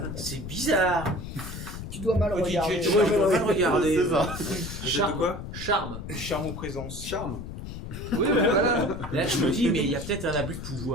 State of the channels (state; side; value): noise; left; rumble, 9 dB below the sound